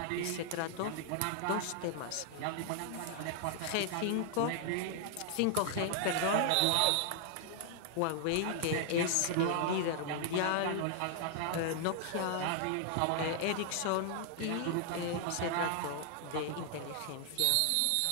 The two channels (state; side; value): different; both; correlation 0.00